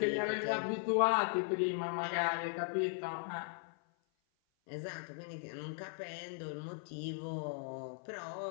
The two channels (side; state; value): right; silent; 52 dB below the other